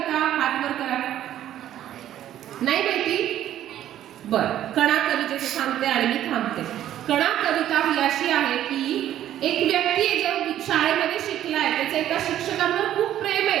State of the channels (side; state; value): left; quieter; 11.9 dB